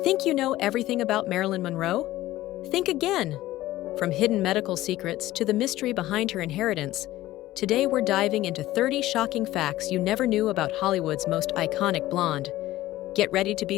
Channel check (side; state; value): right; quieter; 15.9 dB